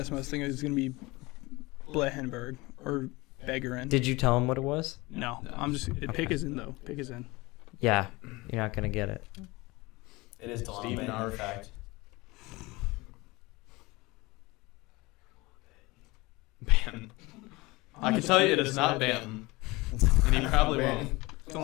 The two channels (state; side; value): quieter; right; 22.7 dB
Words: him, I was thinking it was gonna be Blehenberg or Begarin. Did you tell him what it was? No, I'm just pick is in though. Pick is in. Yeah, you're not going to get it. It is Stephen R. Fact. Banton. I can tell you it is not Banton. And he probably won't.